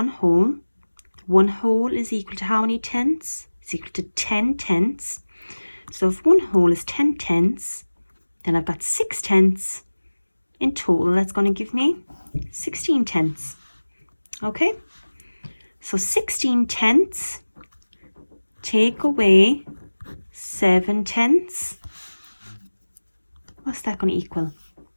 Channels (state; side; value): inverted; both; correlation -1.00